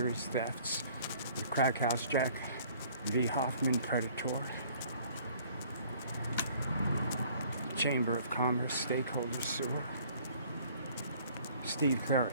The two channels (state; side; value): inverted; both; correlation -0.56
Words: thefts, the Crack House Jack V. Hoffman Predator. Chamber of Commerce Stakeholder Sewer. Steve